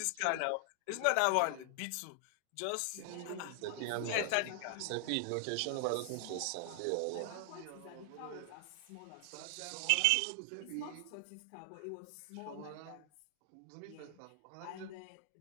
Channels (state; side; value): different; both; correlation 0.00